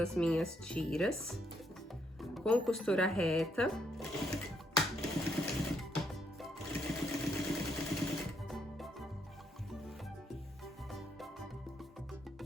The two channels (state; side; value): normal; both; correlation 0.74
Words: minhas tiras com costura reta.